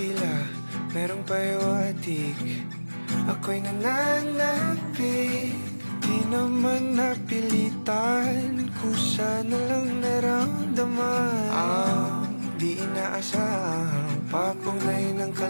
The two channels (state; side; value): inverted; both; correlation -1.00